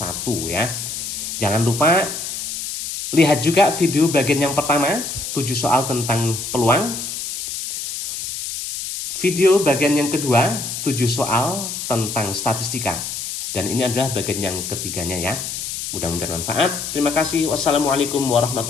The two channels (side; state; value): left; noise; hiss, 5 dB below the sound